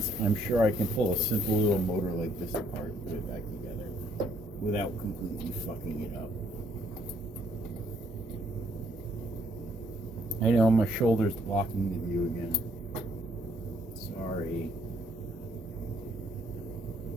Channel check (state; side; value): normal; both; correlation 0.67